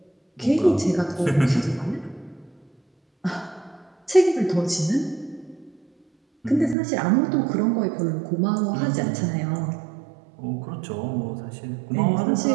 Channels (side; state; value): left; drops out; at 6.8 s